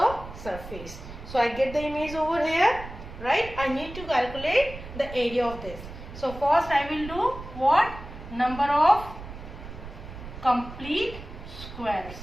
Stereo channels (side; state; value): right; noise; rumble, 13 dB below the sound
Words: surface. So I get the image over here, right? I need to calculate the area of this. So first I will do what? Number of complete squares.